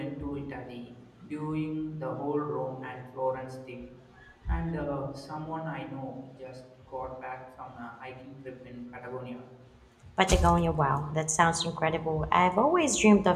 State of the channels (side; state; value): both; identical; correlation 1.00